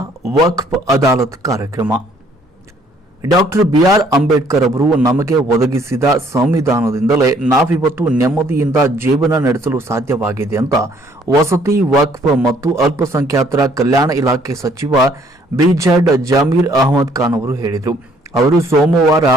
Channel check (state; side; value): normal; both; correlation 0.63